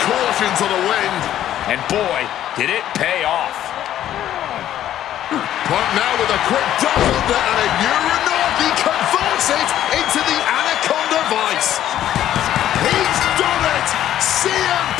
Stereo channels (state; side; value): quieter; right; 11.9 dB